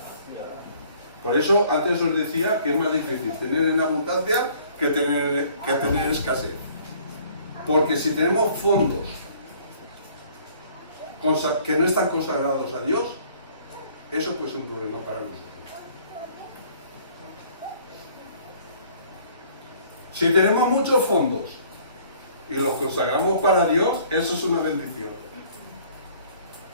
Por eso antes os decía que es más difícil tener en abundancia que tener escasez. Porque si tenemos fondos que no están consagrados a Dios, eso pues es un problema para nosotros. Si tenemos muchos fondos y los consagramos para Dios, eso es una bendición.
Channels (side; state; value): both; inverted; correlation -0.57